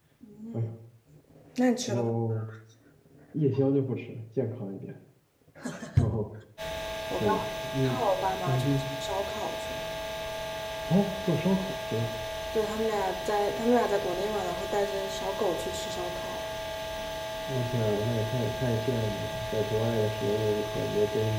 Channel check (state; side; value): identical; both; correlation 1.00